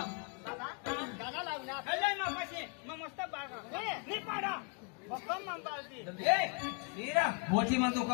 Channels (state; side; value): quieter; right; 37.1 dB